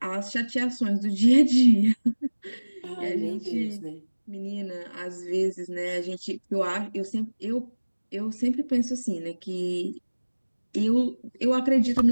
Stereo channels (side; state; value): both; inverted; correlation -1.00